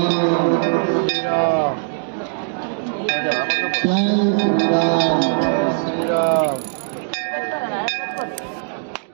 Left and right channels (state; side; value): silent; left; digital silence